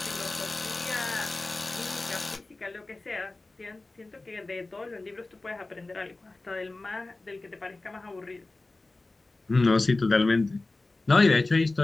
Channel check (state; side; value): quieter; right; 3.2 dB